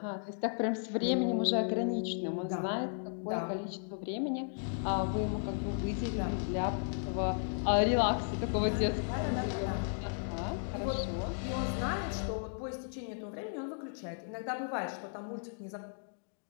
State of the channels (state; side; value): silent; right; digital silence